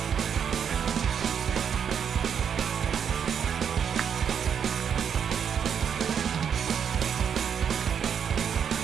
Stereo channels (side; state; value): left; quieter; 7.7 dB